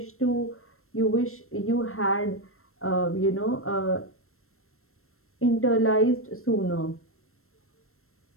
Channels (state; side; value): late; right; 0.62 ms